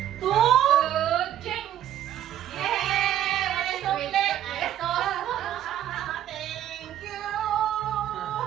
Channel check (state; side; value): quieter; left; 11.6 dB